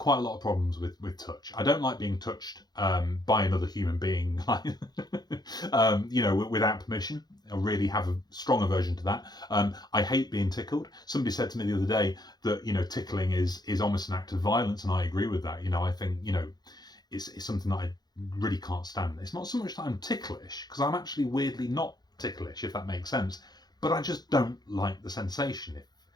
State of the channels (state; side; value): late; right; 0.20 ms